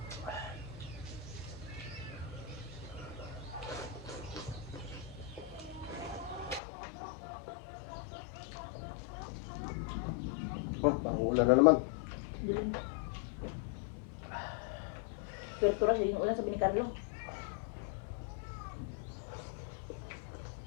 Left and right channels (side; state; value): right; drops out; at 6.6 s